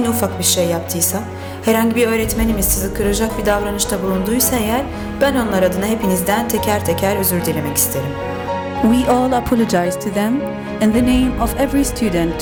ufak bir şey yaptıysa, herhangi bir öğretmenimiz sizi kıracak bir davranışta bulunduysa eğer, ben onlar adına hepinizden teker teker özür dilemek isterim. We all apologize to them in the name of every student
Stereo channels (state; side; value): identical; both; correlation 1.00